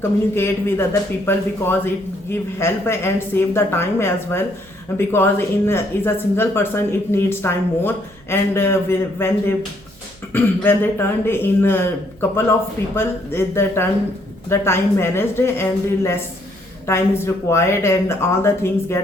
communicate with other people because it give help and save the time as well. Because is a single person, it needs time more, and when they when they turned in a couple of people, the time managed and the less time is required, and all the things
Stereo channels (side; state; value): right; noise; hum, 26 dB below the sound